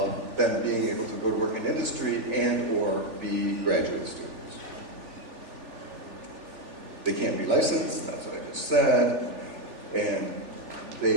them being able to go to work in industry and or be graduate students. They can't be licensed, that's what I just said, and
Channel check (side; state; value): left; late; 3.4 ms